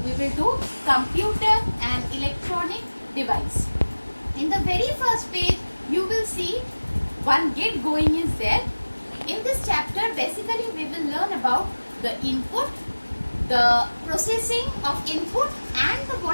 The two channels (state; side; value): inverted; both; correlation -1.00